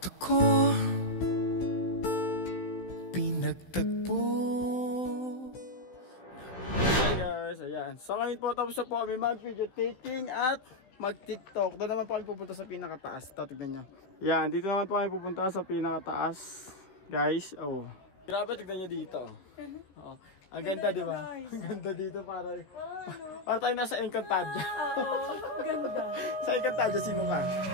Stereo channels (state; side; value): late; right; 16 ms